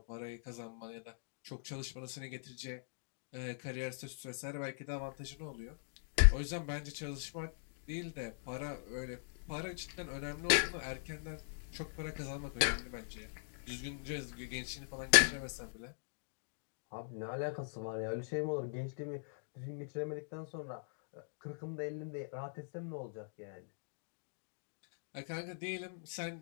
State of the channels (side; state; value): right; silent; digital silence